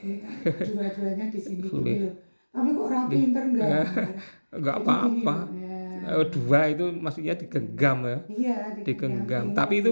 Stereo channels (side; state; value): both; inverted; correlation -1.00